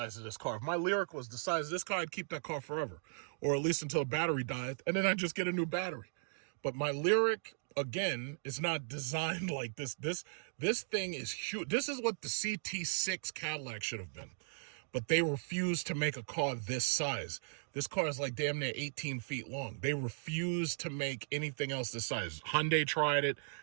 of this car. If my Lyric was the size of this car, I'd keep that car forever, or at least until the battery died, and then I'd just get a new battery. But my Lyric, again, is not designed like this. This thing is huge. This is what the CT6 Cadillac should have been. But they refused to make a car this size. This car is like damn near 18 feet long. They refused to make anything else this size. Hyundai tried it.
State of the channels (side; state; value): left; silent; digital silence